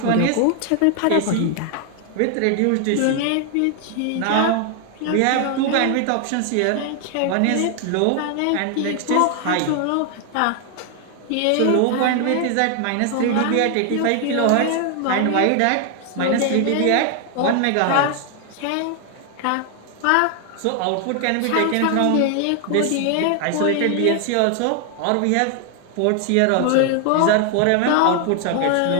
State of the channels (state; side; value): different; both; correlation 0.00